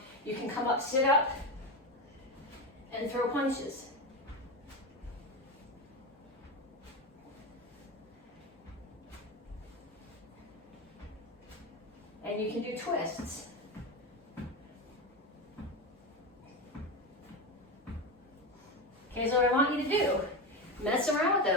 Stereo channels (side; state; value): both; normal; correlation 0.17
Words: You can come up, sit up, and throw punches. And you can do twists. Okay, so what I want you to do, mess around with